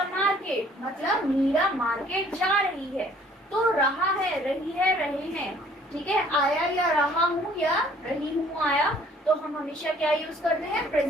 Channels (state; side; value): normal; both; correlation 0.57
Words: market, मतलब मीरा मार्केट जा रही है, तो रहा है, रही है, रहे हैं, ठीक है। आया या रहा हूँ या रही हूँ आया, तो हम हमेशा क्या यूज करते हैं?